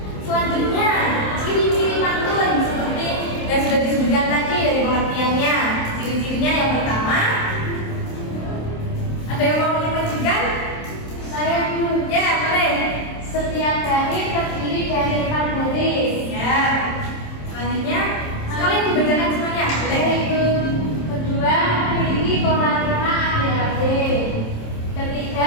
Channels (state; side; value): late; right; 27 ms